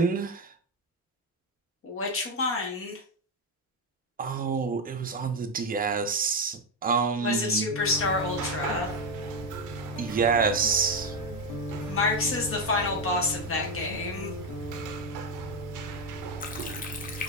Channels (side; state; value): both; normal; correlation 0.07